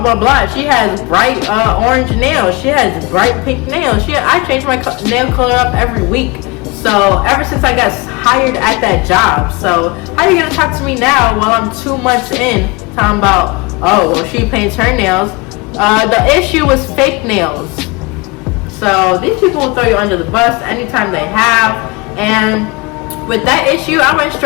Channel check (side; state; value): right; quieter; 25.9 dB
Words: blah, blah. She has bright orange nails. She has bright pink nails. I change my nail color up every week. So ever since I got hired at that job. So how are you going to talk to me now while I'm 2 months in talking about, oh, well, she paints her nails. The issue was fake nails. So these people will throw you under the bus anytime they have. And with that issue, I went